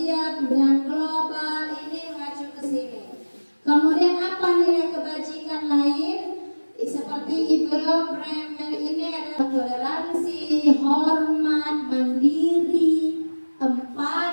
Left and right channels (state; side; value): inverted; both; correlation -1.00